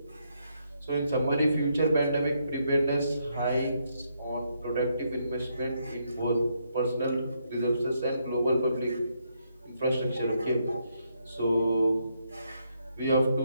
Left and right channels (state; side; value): inverted; both; correlation -0.77